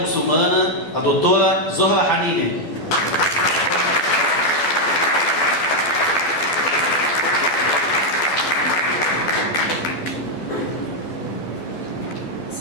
muçulmana, a doutora Zohra Hanine.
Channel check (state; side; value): late; right; 12 ms